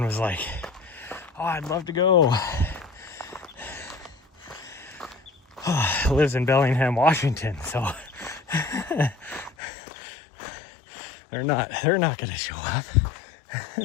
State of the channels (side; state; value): right; drops out; at 9.6 s